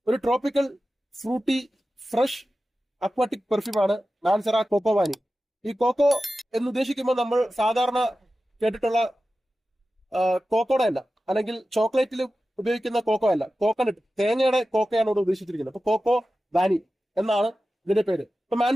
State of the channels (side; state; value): both; normal; correlation 0.94